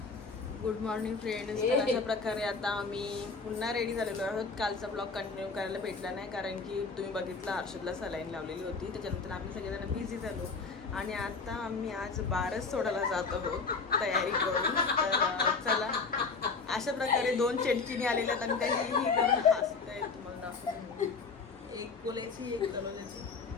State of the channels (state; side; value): quieter; right; 4.5 dB